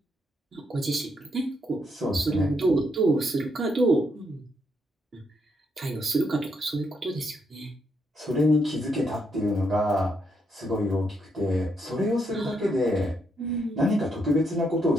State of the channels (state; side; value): normal; both; correlation 0.77